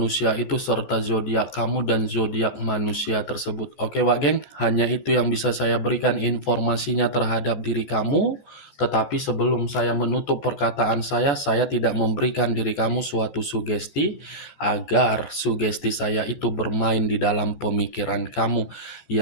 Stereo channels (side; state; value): right; late; 14 ms